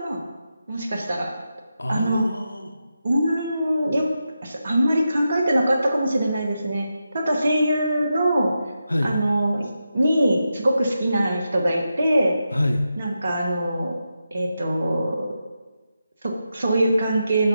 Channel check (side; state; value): both; inverted; correlation -0.88